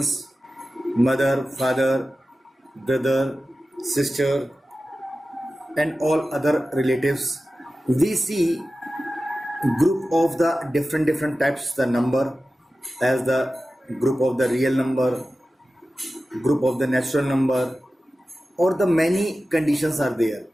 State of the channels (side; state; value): both; normal; correlation 0.95